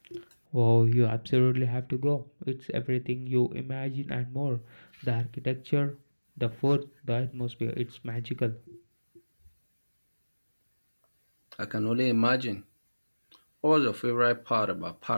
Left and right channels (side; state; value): both; inverted; correlation -1.00